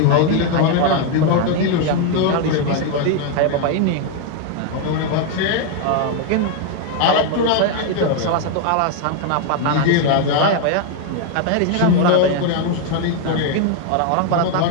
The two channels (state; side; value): different; both; correlation 0.01